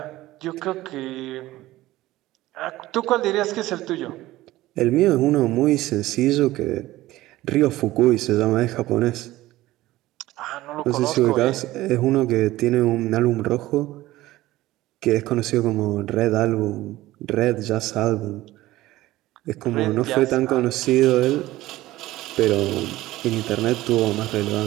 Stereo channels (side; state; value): left; quieter; 16.8 dB